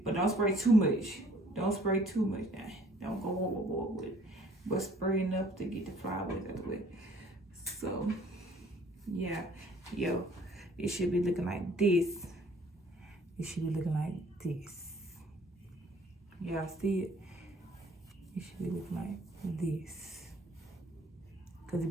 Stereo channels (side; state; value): both; normal; correlation 0.57